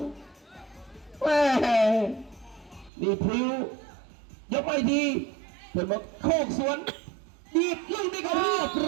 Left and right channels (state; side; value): drops out; left; at 2.9 s